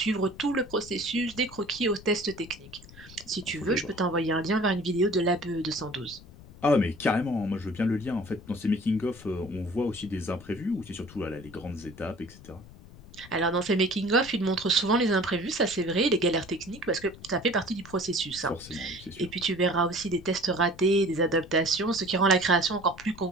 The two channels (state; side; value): noise; left; rumble, 19 dB below the sound